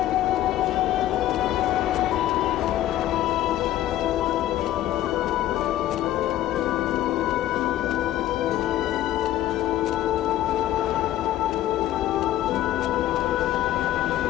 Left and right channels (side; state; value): right; quieter; 13.5 dB